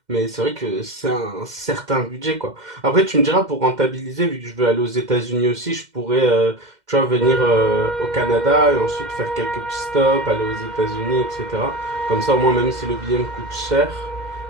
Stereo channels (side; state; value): left; late; 2.1 ms